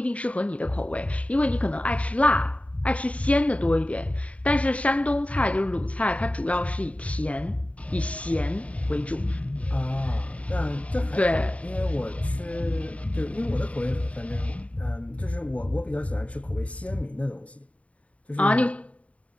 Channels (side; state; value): right; late; 0.066 ms